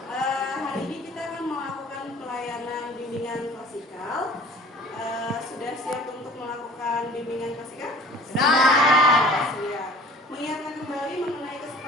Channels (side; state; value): both; normal; correlation 0.47